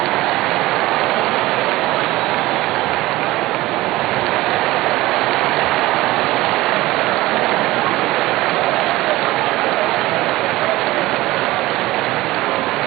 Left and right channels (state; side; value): quieter; left; 18.2 dB